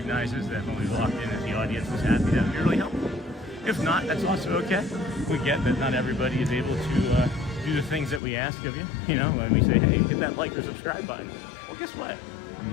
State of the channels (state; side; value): drops out; right; at 8.2 s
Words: that when we walked in that the audience was happy. That would be really helpful. If not, that's also okay. We get that not everybody is able to do the things that we ask of you. You know, when we say, hey, hit that like or subscribe button. Well, guess what?